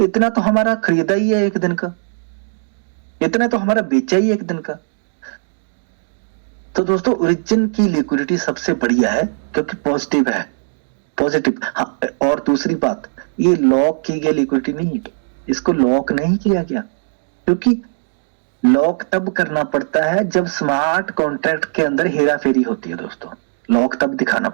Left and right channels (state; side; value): silent; left; digital silence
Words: तो हमारा खरीदा ही है एक दिन का, इतना तो हमारा बेचा ही एक दिन का। तो दोस्तों ओरिजिन की लिक्विडिटी सबसे बढ़िया है, क्योंकि पॉजिटिव है, पॉजिटिव। हाँ, और दूसरी बात, ये लॉक की गई लिक्विडिटी नहीं, इसको लॉक नहीं किया गया, क्योंकि लॉक तब करना पड़ता है जब स्मार्ट कॉन्ट्रैक्ट के अंदर हेरा फेरी होती है दोस्तों, लॉक तब दिखाना